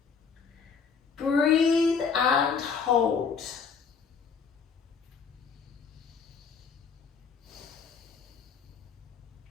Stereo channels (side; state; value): right; quieter; 5.9 dB